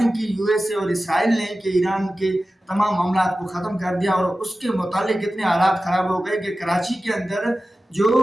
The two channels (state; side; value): normal; both; correlation 0.95